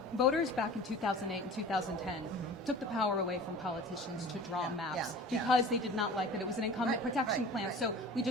voters back in 2008 and 2010 took the power away from politicians to draw maps because they did not like that it was an incumbent protection plan. So we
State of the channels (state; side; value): normal; both; correlation 0.40